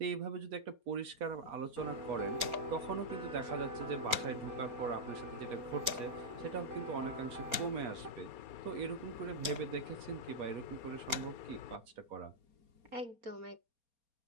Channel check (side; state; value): left; late; 4.3 ms